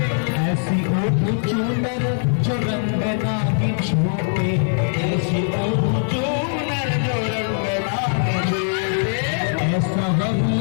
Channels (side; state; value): right; silent; 65 dB below the other